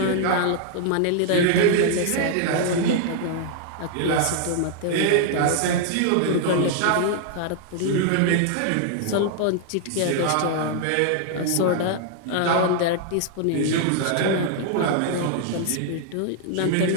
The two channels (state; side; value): different; both; correlation 0.00